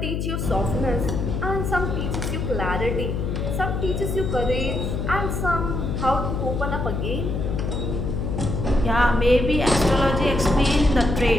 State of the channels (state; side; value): noise; left; hum, 2 dB below the sound